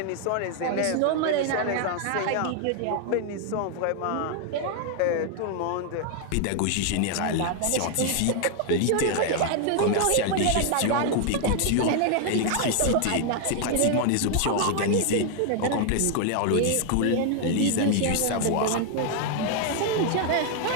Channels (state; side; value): different; both; correlation 0.00